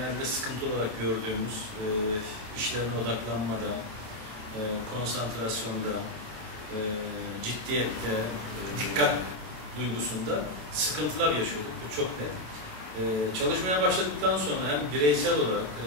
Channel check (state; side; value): late; left; 27 ms